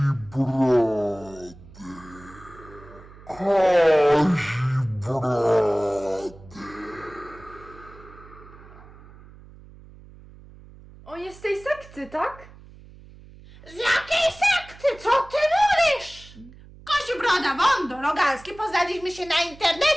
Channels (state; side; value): noise; right; hum, 21 dB below the sound